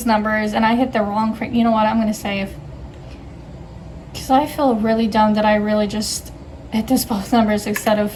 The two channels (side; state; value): both; identical; correlation 1.00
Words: numbers and I hit the wrong frame. You know what? I'm gonna save. Because I feel really dumb that I really just hit this both numbers instead of